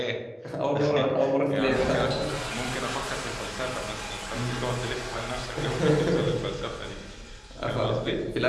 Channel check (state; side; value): identical; both; correlation 1.00